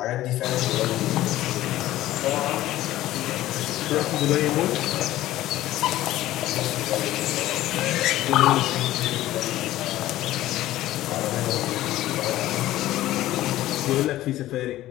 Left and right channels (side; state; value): right; quieter; 15.0 dB